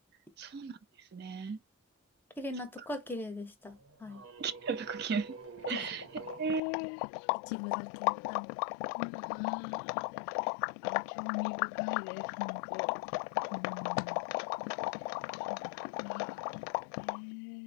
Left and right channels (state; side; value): drops out; right; at 6.6 s